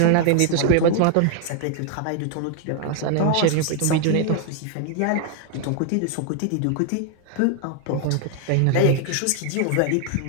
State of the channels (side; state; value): both; different; correlation 0.00